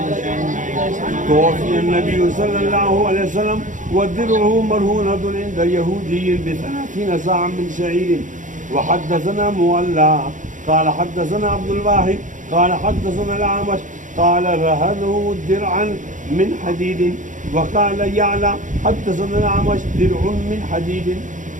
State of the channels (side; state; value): left; late; 0.37 ms